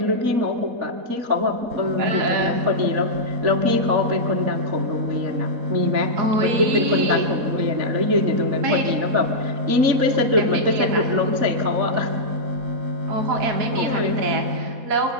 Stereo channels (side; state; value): left; late; 4.1 ms